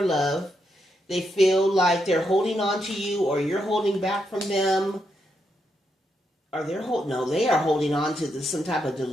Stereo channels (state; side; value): normal; both; correlation 0.81